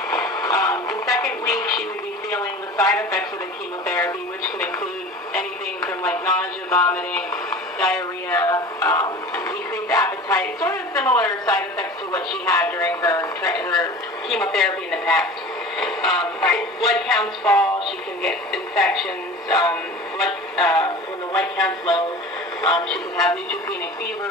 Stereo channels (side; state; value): both; normal; correlation 0.38